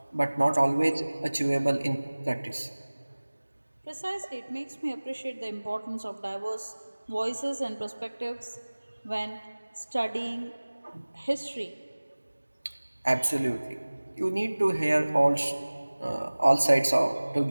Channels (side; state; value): both; inverted; correlation -1.00